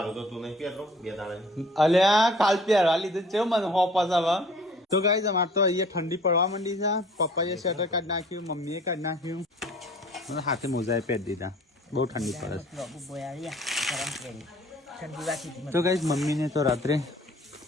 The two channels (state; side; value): normal; both; correlation 0.52